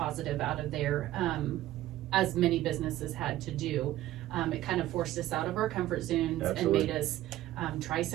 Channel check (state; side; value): quieter; left; 14.8 dB